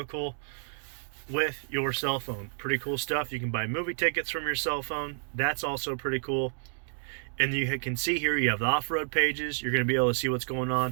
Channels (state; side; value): silent; left; digital silence